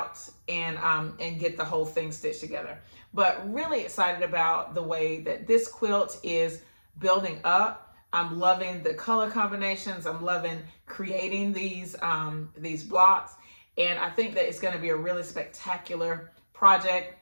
and get the whole thing stitched together. But really excited about the way that this quilt is building up. I'm loving the color combinations. I'm loving creating these blocks, and I think that it's going to be a really spectacular project.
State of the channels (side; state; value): both; inverted; correlation -1.00